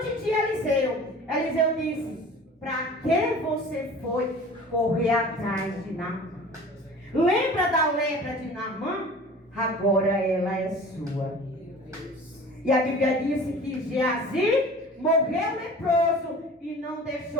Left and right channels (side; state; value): both; normal; correlation 0.42